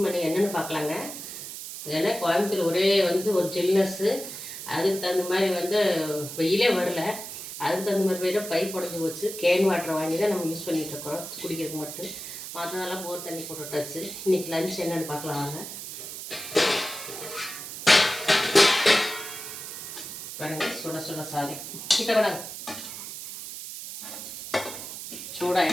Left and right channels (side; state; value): right; noise; hiss, 9 dB below the sound